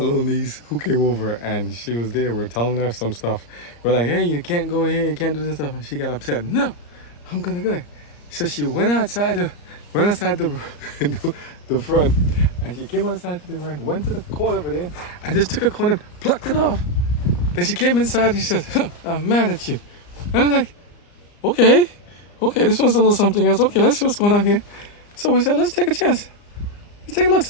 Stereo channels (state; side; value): late; right; 34 ms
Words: niece who came over and she was there. We're telling her some stuff. We're like, hey, you can't go here, you can't do this stuff. And she got upset. No, I'm gonna go. So she went outside the the front, and she came outside to the ground, went to the corner over there, and just took a corner, plucked it off. Then she came inside and she said, I'm mad at you. And I was like, okay, this one's a little something else. Okay, let's see what's going on here. So we said, let's take a chance. Let's take a look.